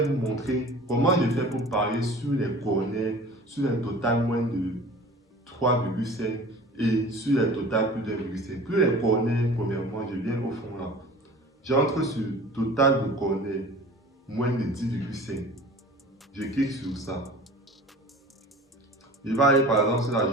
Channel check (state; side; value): normal; both; correlation 0.42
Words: vous montrer comment je fais pour parier sur les corners, sur un total moins de 3,5 et sur les total plus d'1,5. Plus les corners, premièrement, je viens au fond là. J'entre sur total de corners moins de 10,5. Je clique sur ça. Je vais aller par exemple sur la